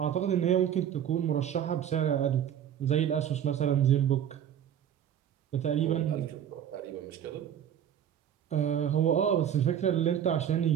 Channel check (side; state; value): left; quieter; 9.7 dB